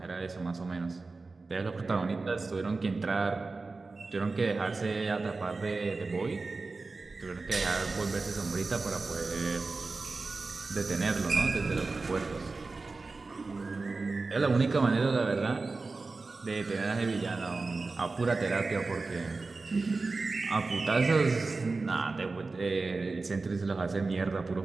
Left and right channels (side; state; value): left; quieter; 3.8 dB